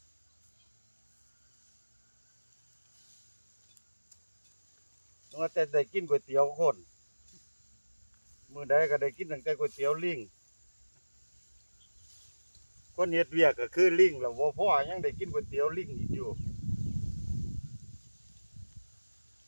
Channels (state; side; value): inverted; both; correlation -1.00